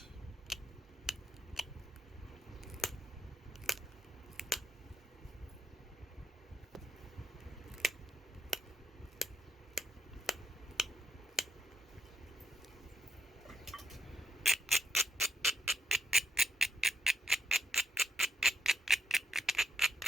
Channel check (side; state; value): both; normal; correlation 0.81